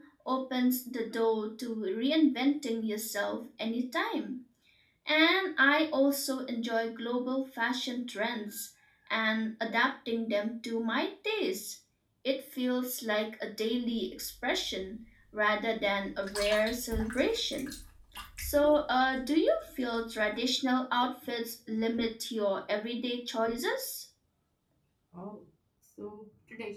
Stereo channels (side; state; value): both; identical; correlation 1.00